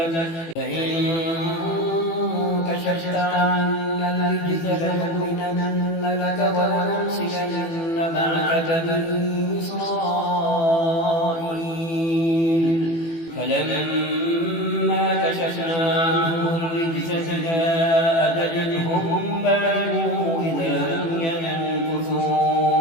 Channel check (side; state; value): right; late; 18 ms